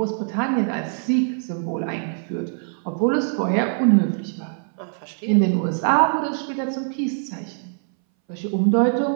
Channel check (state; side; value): silent; left; 61 dB below the other